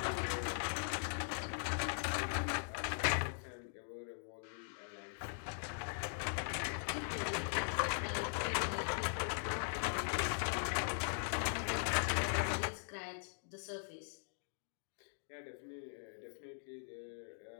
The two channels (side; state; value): right; silent; digital silence